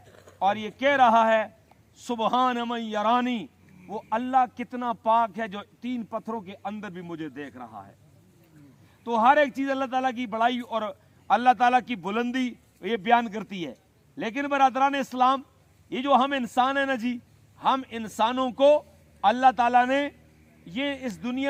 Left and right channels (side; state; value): both; identical; correlation 1.00